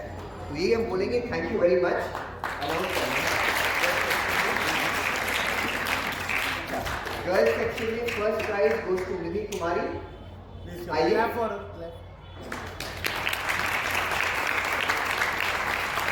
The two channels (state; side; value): identical; both; correlation 1.00